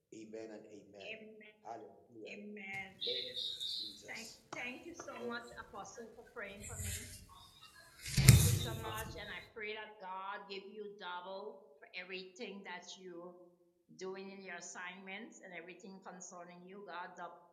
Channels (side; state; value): both; identical; correlation 1.00